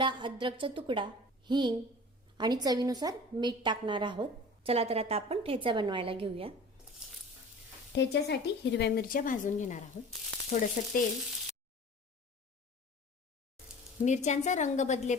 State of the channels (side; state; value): both; normal; correlation 0.41